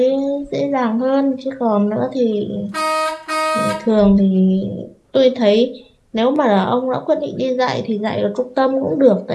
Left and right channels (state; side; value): identical; both; correlation 1.00